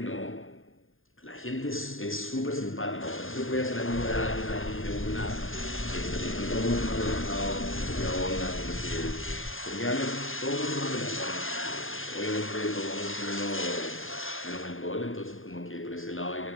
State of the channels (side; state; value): right; late; 0.59 ms